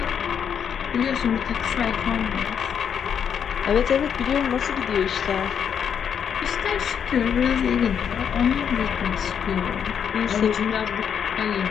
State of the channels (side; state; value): right; quieter; 7.9 dB